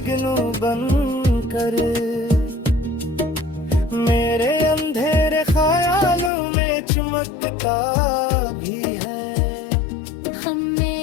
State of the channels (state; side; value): drops out; right; at 6.3 s